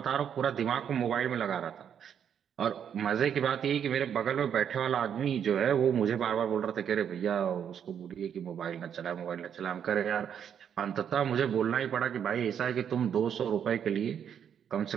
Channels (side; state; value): left; quieter; 8.4 dB